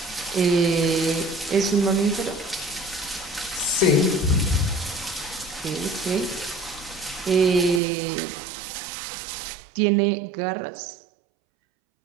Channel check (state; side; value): drops out; left; at 7.8 s